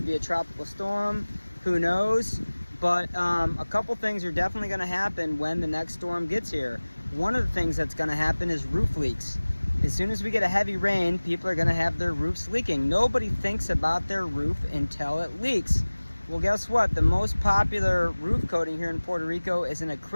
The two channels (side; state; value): both; inverted; correlation -1.00